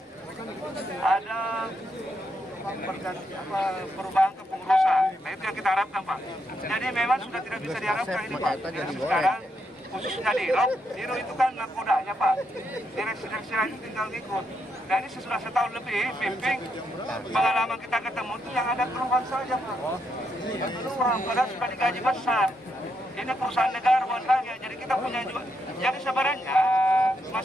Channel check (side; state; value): both; normal; correlation 0.80